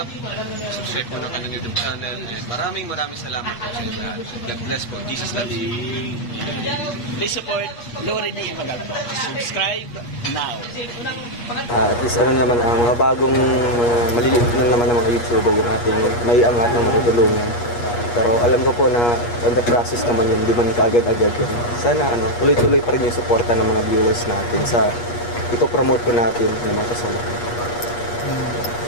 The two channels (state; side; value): late; right; 8.4 ms